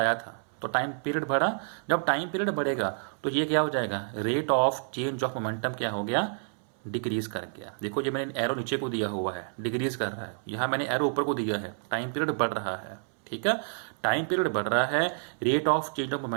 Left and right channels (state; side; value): silent; left; 59 dB below the other